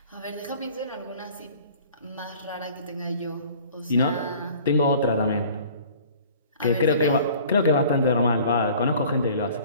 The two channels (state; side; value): inverted; both; correlation -0.49